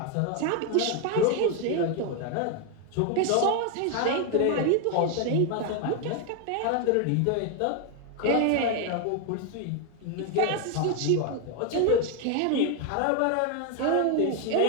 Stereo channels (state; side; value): different; both; correlation 0.01